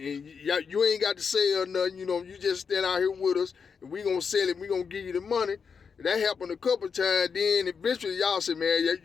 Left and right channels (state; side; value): quieter; right; 6.0 dB